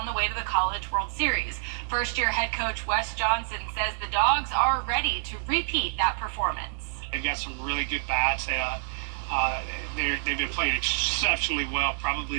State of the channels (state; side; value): silent; left; digital silence